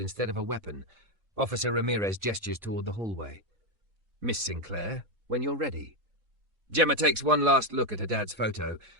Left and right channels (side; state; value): left; late; 4.0 ms